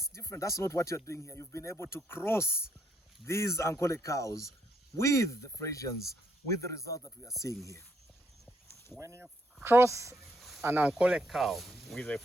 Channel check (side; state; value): both; normal; correlation 0.73